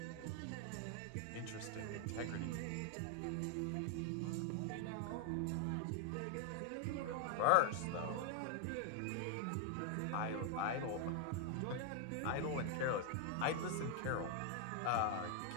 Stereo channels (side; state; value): both; different; correlation 0.00